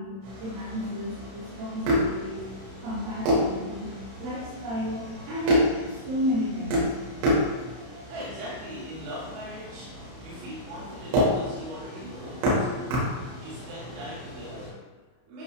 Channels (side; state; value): left; late; 31 ms